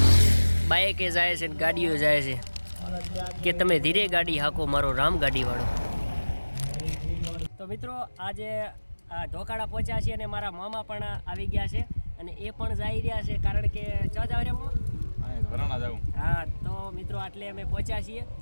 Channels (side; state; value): both; inverted; correlation -1.00